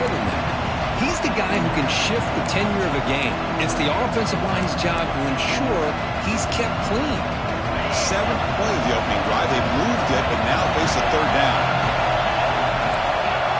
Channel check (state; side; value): identical; both; correlation 1.00